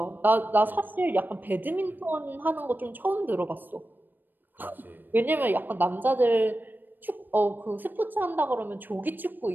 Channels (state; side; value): late; left; 0.091 ms